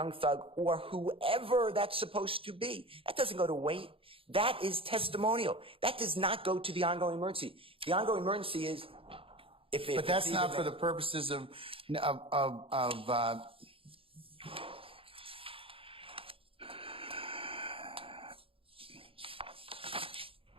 Thug or whoever that's supposed to be. That doesn't go to weight. That is testimonial. That does not go to the ongoing emergency. The ongoing emergency is But that's not for the purposes of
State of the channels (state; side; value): late; left; 0.27 ms